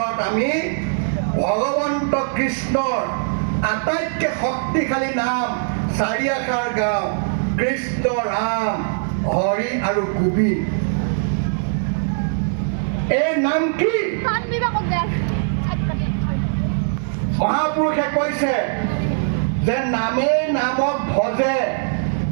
আমি ভগৱন্ত কৃষ্ণৰ আটাইতকৈ শক্তিশালী নাম 4 আখৰ গাওঁ: কৃষ্ণ, ৰাম, হৰি আৰু গোবিন্দ। এই নাম কি? মহাপুৰুষে কৈছে যে নামেই নামক ভজে,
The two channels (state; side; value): silent; left; 65 dB below the other